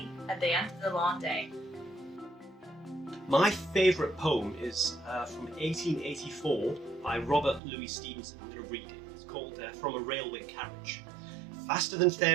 at the end of the long day. My favourite poem is from 1884 by Robert Louis Stevenson. I'm going to read it. It's called From a Railway Carriage. Faster than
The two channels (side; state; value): left; drops out; at 7.6 s